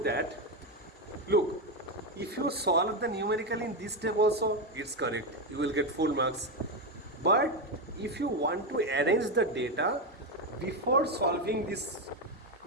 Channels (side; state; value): both; normal; correlation 0.10